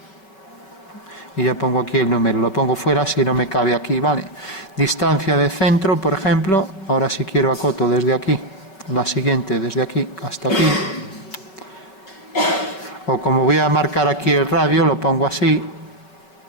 Y ya pongo aquí el número, lo pongo fuera si no me cabe aquí, ¿vale? Distancia de centro, por ejemplo, ahora si quiero acoto desde aquí, la siguiente desde aquí hasta aquí, o como voy a marcar aquí el radio, lo pongo así.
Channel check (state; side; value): late; right; 5.3 ms